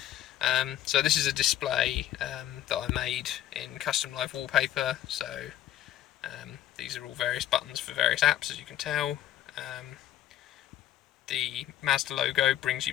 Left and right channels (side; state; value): right; quieter; 12.4 dB